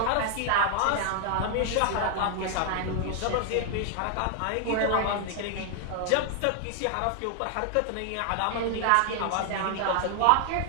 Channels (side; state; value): both; different; correlation 0.00